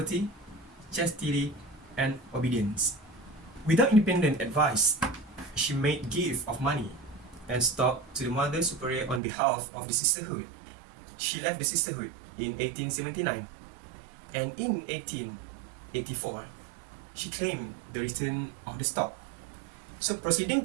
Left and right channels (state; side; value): drops out; left; at 9.2 s